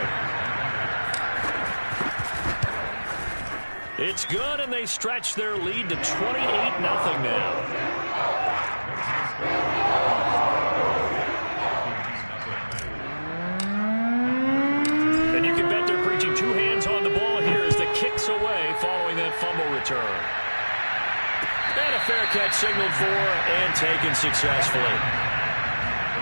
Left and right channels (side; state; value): both; inverted; correlation -1.00